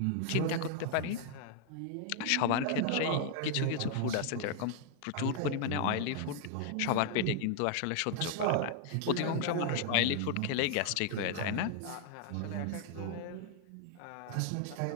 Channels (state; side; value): different; both; correlation 0.00